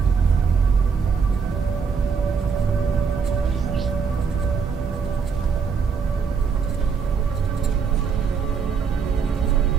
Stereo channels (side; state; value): left; quieter; 5.9 dB